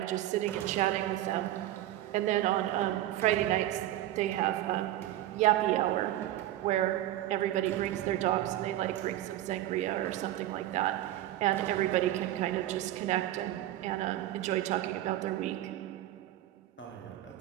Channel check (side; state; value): left; quieter; 14.1 dB